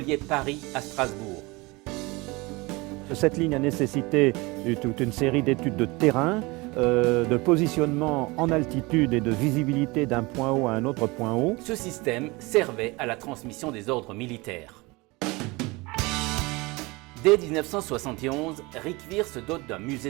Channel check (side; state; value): left; quieter; 24.2 dB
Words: Paris à Strasbourg. Cette ligne a nécessité toute une série d'études de terrain, de positionnement en altitude et de visibilité d'un point haut à un autre point haut. Ce système servait à la transmission des ordres militaires. Dès 1971, Ricquewihr se dote d'un